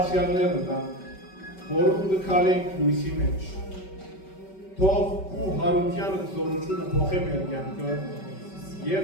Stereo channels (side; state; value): right; late; 5.2 ms